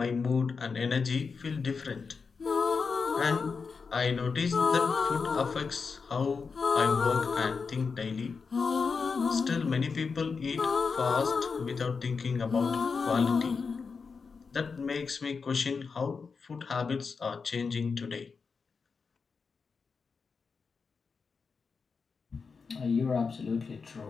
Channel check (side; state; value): right; quieter; 5.1 dB